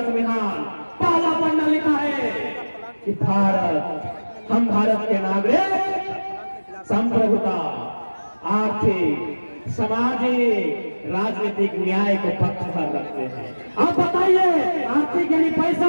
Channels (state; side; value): inverted; both; correlation -1.00